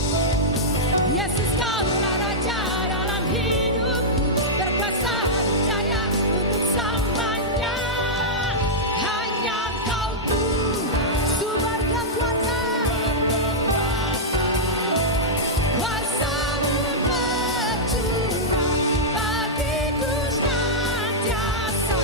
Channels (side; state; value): both; normal; correlation -0.09